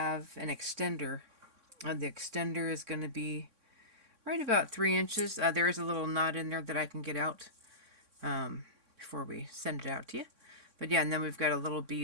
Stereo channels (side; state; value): left; late; 3.6 ms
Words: an extender. The extender is going to be right about 3 inches. There is a little knot in there that I can get out before we send it out to you. But yeah, and then we've got a little